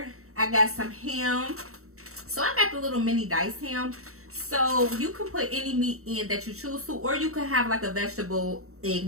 I got some ham. So I got the little mini diced ham. So you can put any meat in that you choose to, or you could have like a vegetable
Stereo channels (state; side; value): late; left; 0.64 ms